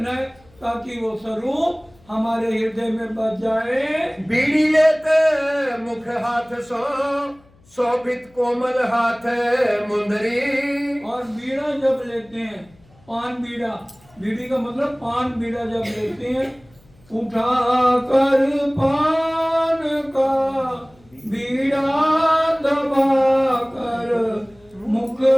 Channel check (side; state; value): left; noise; hum, 29 dB below the sound